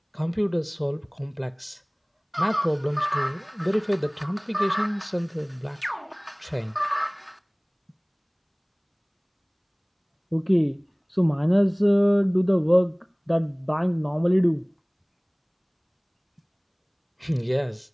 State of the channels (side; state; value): both; identical; correlation 1.00